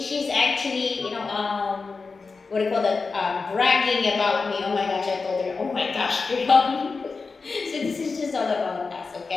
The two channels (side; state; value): right; quieter; 4.4 dB